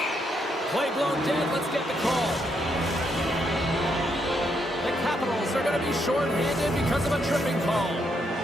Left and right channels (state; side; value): normal; both; correlation 0.77